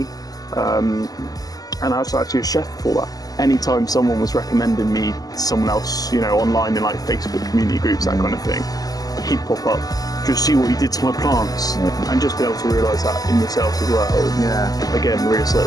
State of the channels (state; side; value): late; right; 0.18 ms